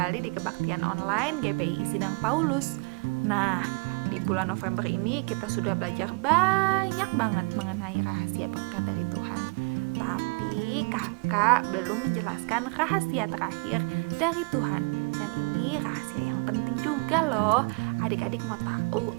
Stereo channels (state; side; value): quieter; left; 31.6 dB